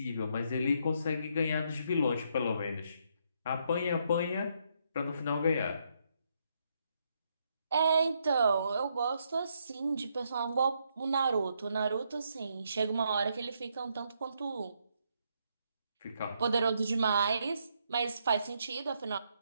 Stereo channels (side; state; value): both; inverted; correlation -0.75